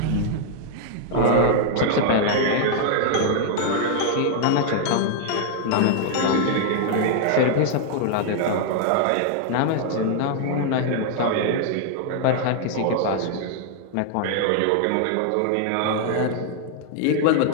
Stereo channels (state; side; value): different; both; correlation 0.00